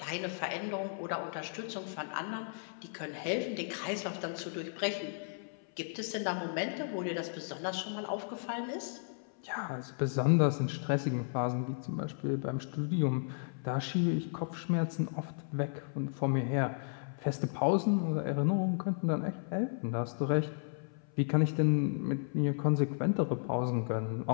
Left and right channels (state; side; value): silent; right; 55 dB below the other